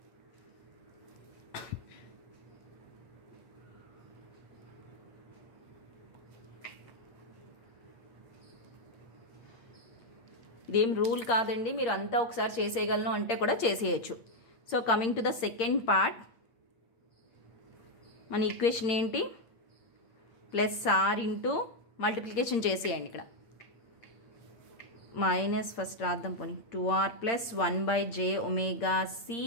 ఇదేం రూల్ కాదండి, మీరు అంతా ఒకసారి చేసేయగలను అంటే కూడా చేసేయచ్చు. So coming to the second part, మన ఈక్వేషన్ ఏంటి, ప్లస్ ఆర్ ఇంటూ మల్టిప్లికేషన్ చేసేయండి. ఇక్కడ మైనస్ ఫస్ట్ రాద్దాం పోనీ, 2r plus 1 by j omega c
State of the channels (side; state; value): right; late; 8.8 ms